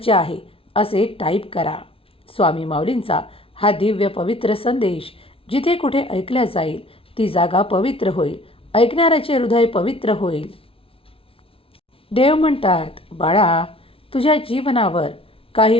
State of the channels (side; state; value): right; late; 0.26 ms